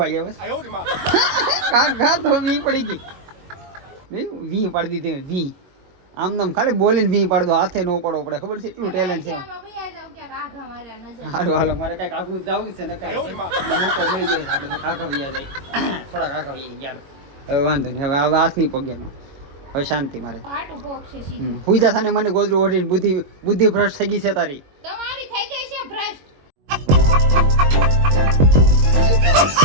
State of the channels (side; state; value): left; late; 22 ms